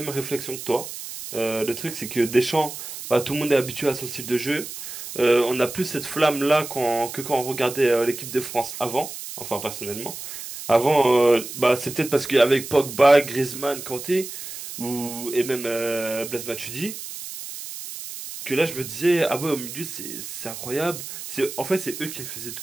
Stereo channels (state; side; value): noise; right; hiss, 10 dB below the sound